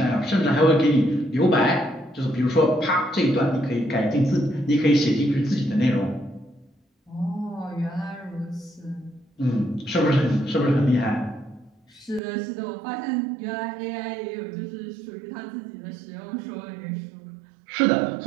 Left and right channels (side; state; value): left; drops out; at 12.2 s